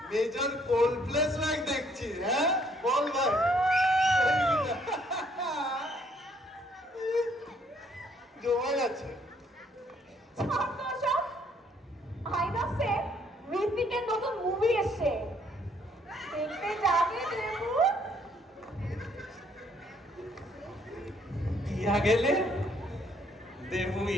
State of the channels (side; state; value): both; normal; correlation 0.66